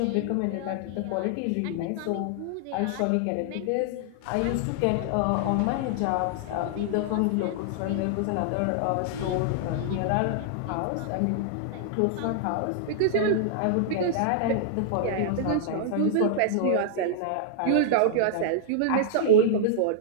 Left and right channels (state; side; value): different; both; correlation -0.01